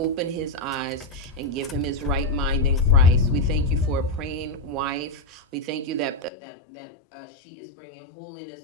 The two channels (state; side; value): drops out; right; at 6.3 s